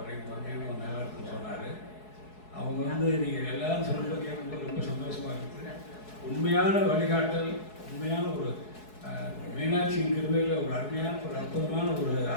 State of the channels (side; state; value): right; late; 4.7 ms